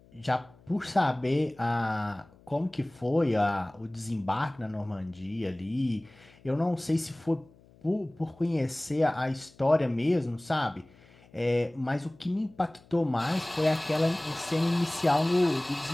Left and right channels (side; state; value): left; noise; hum, 27 dB below the sound